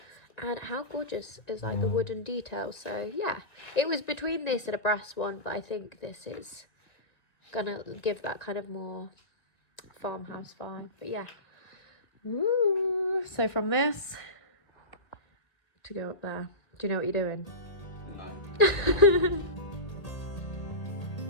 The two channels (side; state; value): right; late; 1.8 ms